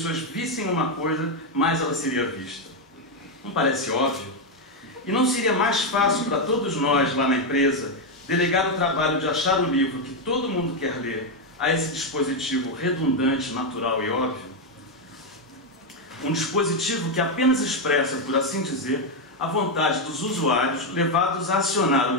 vissem uma coisa, mais ela seria vista? Não parece óbvio? E não seria mais fácil para todos nós lá na empresa delegar o trabalho de achar o livro que todo mundo quer ler a esse dispositivo redundante, natural e óbvio? Um dispositivo que apenas expressa, por assim dizer, a vontade dos usuários levados a acionar o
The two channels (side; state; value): both; normal; correlation 0.04